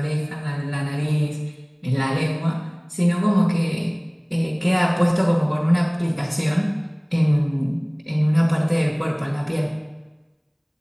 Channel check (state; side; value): identical; both; correlation 1.00